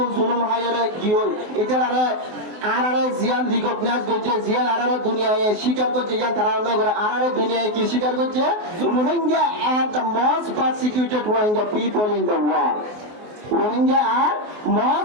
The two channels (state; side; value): late; left; 24 ms